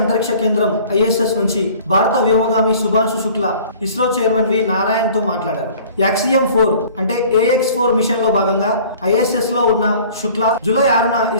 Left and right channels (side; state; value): both; inverted; correlation -0.49